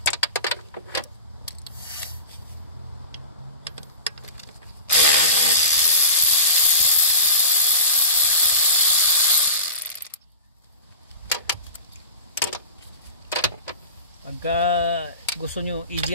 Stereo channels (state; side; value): inverted; both; correlation -0.32